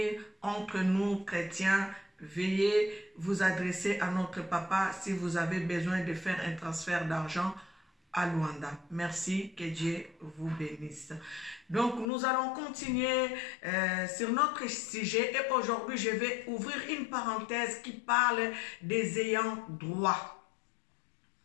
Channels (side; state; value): right; drops out; at 12.1 s